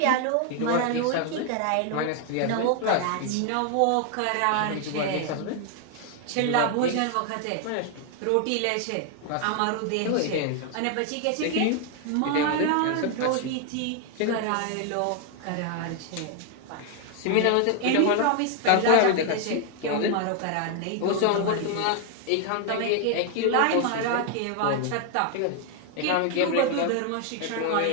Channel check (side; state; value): both; different; correlation 0.00